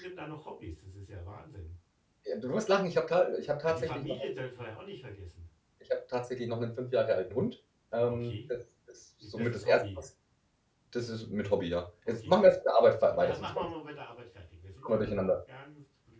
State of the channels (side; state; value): both; identical; correlation 1.00